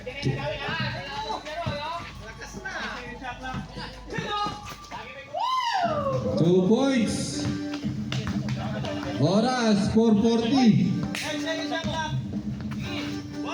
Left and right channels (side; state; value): both; identical; correlation 1.00